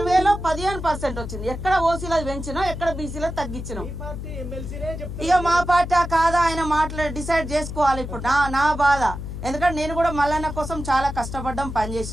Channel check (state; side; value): noise; left; hum, 7 dB below the sound